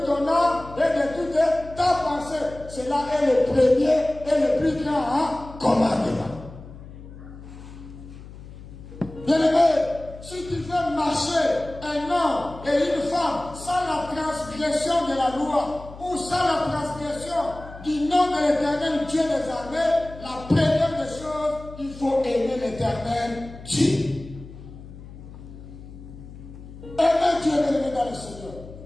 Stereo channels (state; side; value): noise; left; hum, 16 dB below the sound